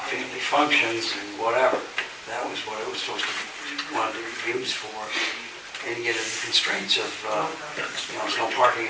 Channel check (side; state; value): both; identical; correlation 1.00